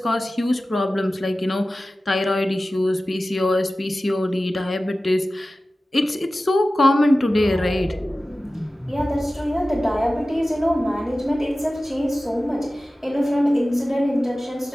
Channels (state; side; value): normal; both; correlation 0.96